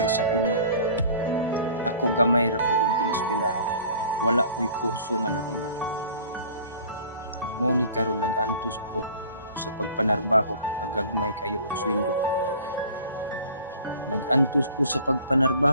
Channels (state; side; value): inverted; both; correlation -0.47